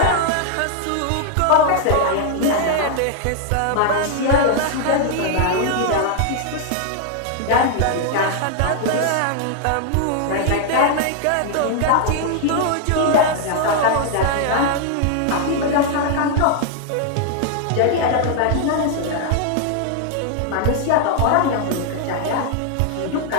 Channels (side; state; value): both; different; correlation 0.00